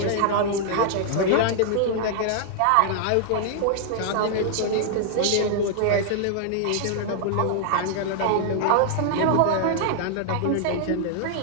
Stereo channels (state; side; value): different; both; correlation -0.01